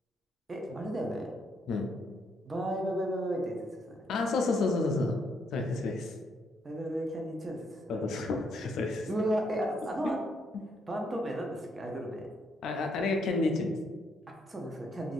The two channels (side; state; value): both; normal; correlation 0.74